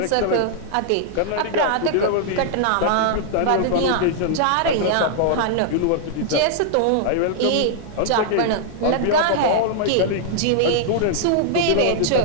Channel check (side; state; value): both; different; correlation -0.01